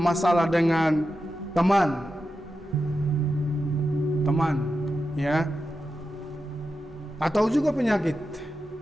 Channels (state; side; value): normal; both; correlation 0.90